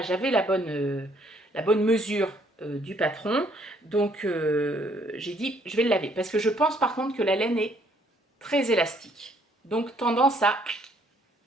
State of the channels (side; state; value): both; normal; correlation 0.65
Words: j'avais la bonne mesure du patron. Donc, j'ai dit, je vais le laver. Parce que je pense par contre que la laine est très élastique. Donc, tendance à...